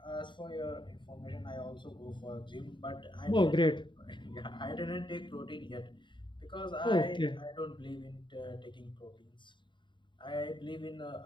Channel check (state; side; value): late; right; 0.23 ms